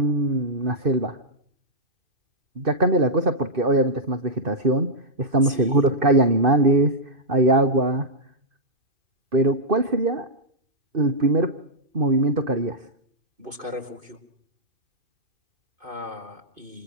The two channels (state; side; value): late; left; 2.5 ms